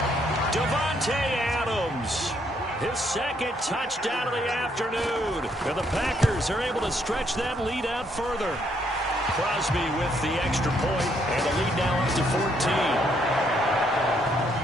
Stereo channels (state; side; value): normal; both; correlation 0.71